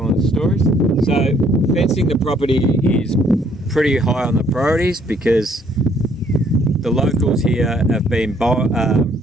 the stories. So fencing the property is pretty high on the priorities, because the locals here have been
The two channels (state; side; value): normal; both; correlation 0.64